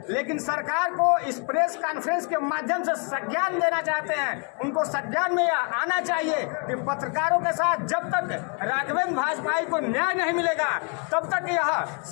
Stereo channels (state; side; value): quieter; right; 38.1 dB